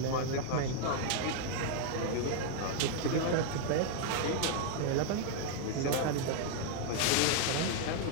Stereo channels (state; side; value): different; both; correlation 0.00